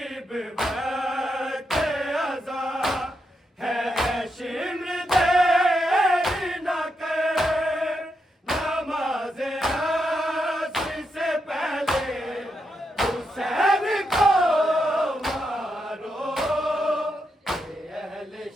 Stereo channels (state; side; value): normal; both; correlation 0.83